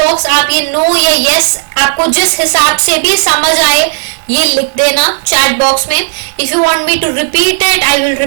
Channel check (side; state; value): left; silent; 63 dB below the other